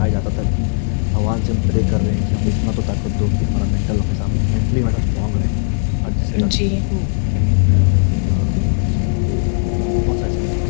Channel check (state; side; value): silent; right; 68 dB below the other